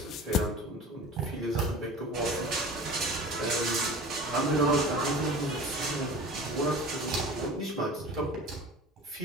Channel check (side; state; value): both; normal; correlation 0.38